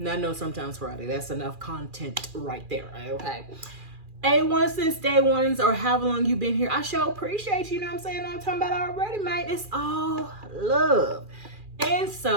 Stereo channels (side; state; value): left; late; 2.4 ms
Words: no, sometimes Friday. That's enough content right there, okay? A1 since day ones or however long you've been here. I sure appreciate you, know what I'm saying? I'm talking about already, man. It's all love. And